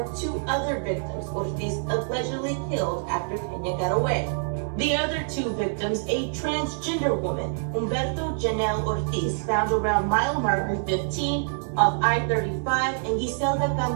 2 other victims Ortiz allegedly killed after Peña got away. The other 2 victims, a transgender woman, Humberto Janelle Ortiz, found around mile marker 15 of I-35, and Giselda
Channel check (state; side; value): silent; left; 61 dB below the other